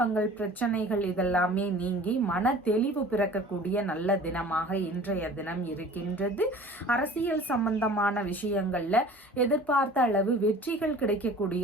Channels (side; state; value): both; normal; correlation 0.44